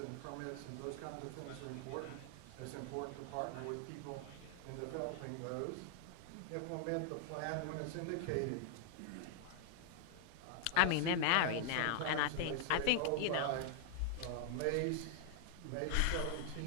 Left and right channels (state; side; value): different; both; correlation 0.00